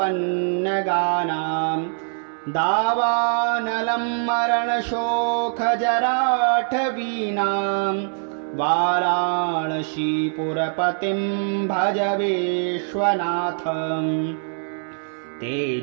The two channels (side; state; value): left; silent; 63 dB below the other